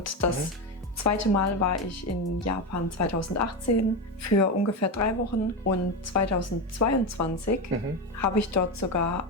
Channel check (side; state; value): both; normal; correlation 0.15